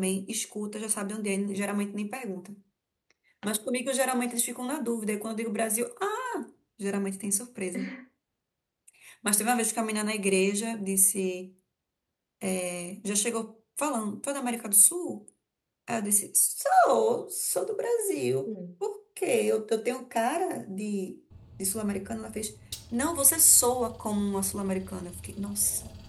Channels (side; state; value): both; identical; correlation 1.00